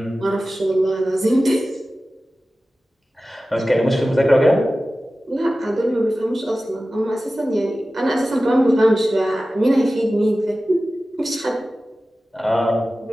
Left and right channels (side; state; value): both; normal; correlation 0.95